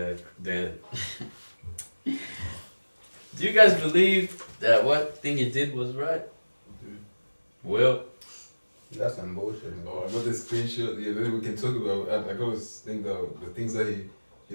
do you guys believe that what thing he did was right? Well, That's some bullshit. Oh, I got the screenshot. Yeah, then we can talk about. I always think that the things that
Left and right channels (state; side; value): inverted; both; correlation -1.00